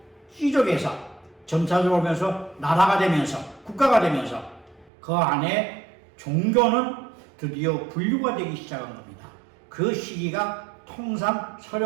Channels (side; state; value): left; drops out; at 4.9 s